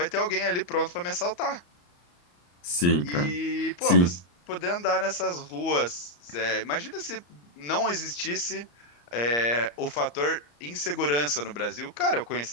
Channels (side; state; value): right; late; 34 ms